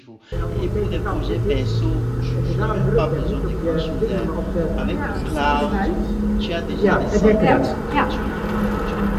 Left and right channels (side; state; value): both; identical; correlation 1.00